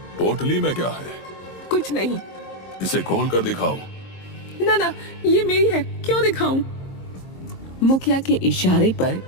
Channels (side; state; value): right; late; 22 ms